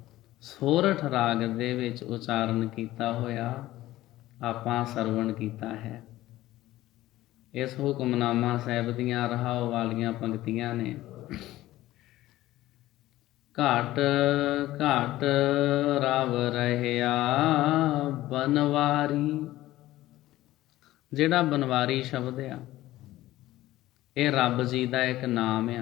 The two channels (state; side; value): quieter; right; 15.9 dB